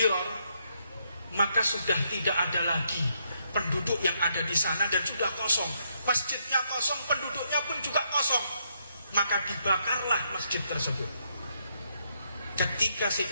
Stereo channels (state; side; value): inverted; both; correlation -0.76